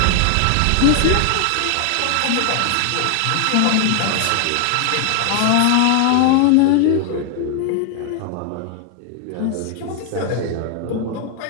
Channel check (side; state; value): both; different; correlation 0.00